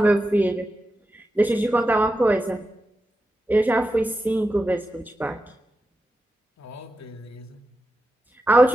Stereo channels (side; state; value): both; normal; correlation 0.90